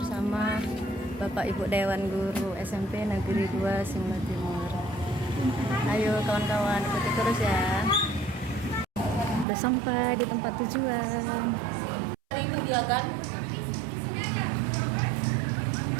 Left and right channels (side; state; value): left; drops out; at 9.5 s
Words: Bapak Ibu Dewan Guru SMP Negeri 2 Simla Timur. Ayo kawan-kawan, ikuti terus ya. Udah sampai di tempat tujuan. Ini dia kan?